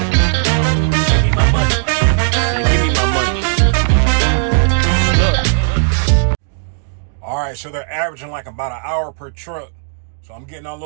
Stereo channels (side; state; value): left; silent; digital silence